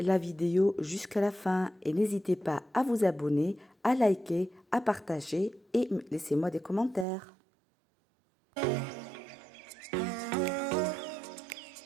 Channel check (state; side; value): drops out; left; at 7.1 s